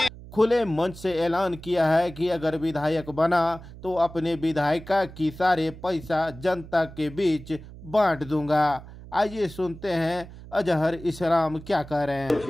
खुले मंच से ऐलान किया है कि अगर विधायक बना तो अपने विधायिका की सारे पैसा जनता के बीच बांट दूंगा। आइए सुनते हैं अजहर इस्लाम क्या कह रहे हैं।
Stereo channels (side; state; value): right; noise; hum, 16 dB below the sound